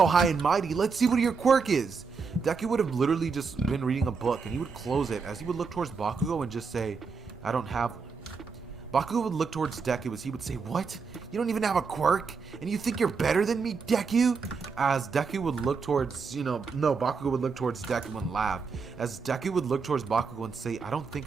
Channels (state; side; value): quieter; left; 5.1 dB